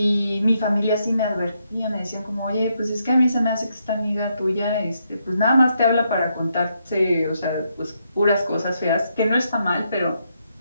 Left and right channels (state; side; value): inverted; both; correlation -0.79